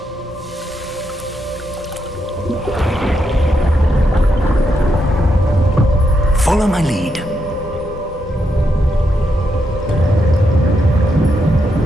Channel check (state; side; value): normal; both; correlation 0.81